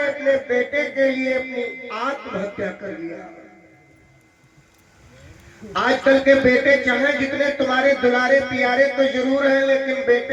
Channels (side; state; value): both; identical; correlation 1.00